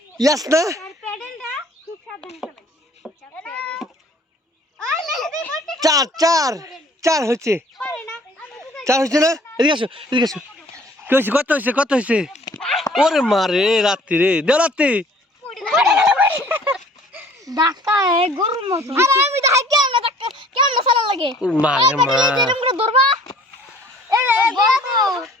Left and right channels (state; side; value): normal; both; correlation 0.53